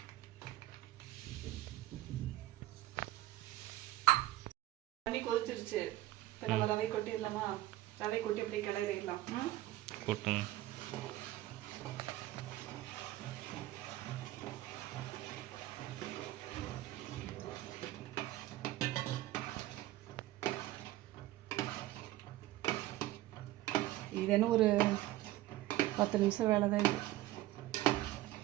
தண்ணி கொதிச்சிருச்சு. இப்போ நம்ம ரவை கொட்டிடலாமா? ரவை கொட்டி அப்படியே கிளறிடலாம். கொட்டுங்க. இது என்ன ஒரு 10 நிமிஷம் வேலை தான் இது.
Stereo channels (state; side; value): quieter; left; 15.8 dB